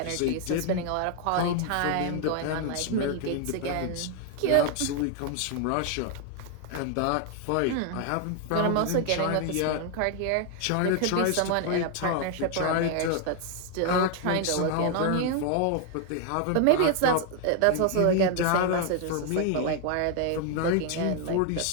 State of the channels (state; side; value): different; both; correlation 0.00